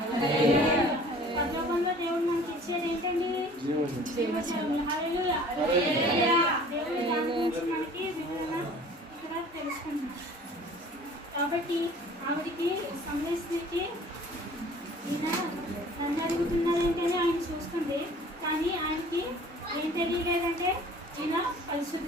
పరలోకంలో దేవుడు మనకి ఇచ్చేది ఏంటండి? జీవజలములు. హల్లెలూయా. దేవుడు దాని గురించి మనకి వివరణ ఇక్కడ తెలుసుకుంటున్నాం. కాబట్టి ఆవిడికి సమరయ ఈయన నన్ను అడుగుతున్నారు ఏంటని ఆయన చూస్తుంది. కానీ ఆయనకి ఏం తెలియలేదంటే ఈయన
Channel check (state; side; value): normal; both; correlation 0.48